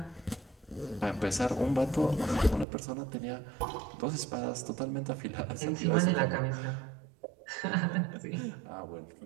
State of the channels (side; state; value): left; drops out; at 2.7 s